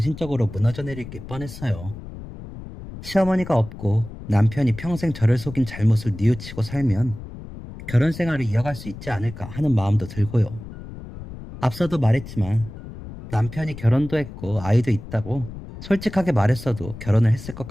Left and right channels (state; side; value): noise; left; rumble, 13 dB below the sound